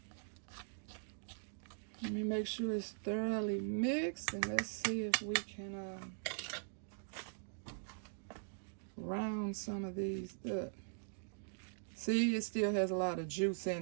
Let me make sure it's thoroughly mixed, and let's see if we can round some of these up. See, it still has a lot of juice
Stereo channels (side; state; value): left; silent; digital silence